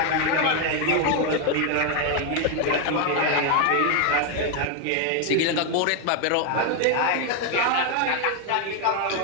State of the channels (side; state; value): both; different; correlation 0.01